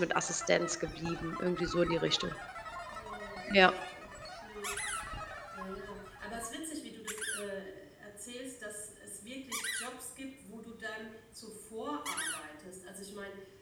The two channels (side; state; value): both; identical; correlation 1.00